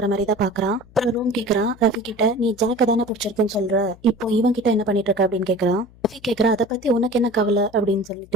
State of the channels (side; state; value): left; noise; hum, 25 dB below the sound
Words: மாதிரி தான் பாக்குறான். அப்புறம் ரூம் கேக்குறான் ரஃபி கிட்ட, நீ ஜாக்க தானே பிடிச்சிருக்குன்னு சொல்ற, இப்போ இவன் கிட்ட என்ன பண்ணிட்டு இருக்க அப்படின்னு கேக்குறான். ரஃபி கேக்குறா, அதை பத்தி உனக்கு என்ன கவலை அப்படின்னு